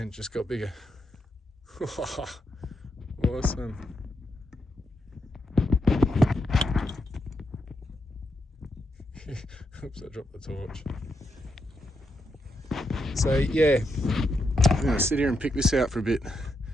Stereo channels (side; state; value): both; normal; correlation 0.82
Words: and just got bigger. Awesome. Oops, I dropped the torch. So yeah, I'm going to sit here and pick this out for a bit,